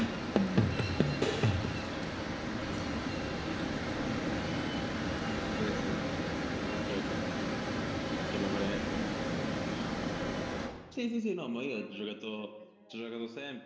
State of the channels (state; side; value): identical; both; correlation 1.00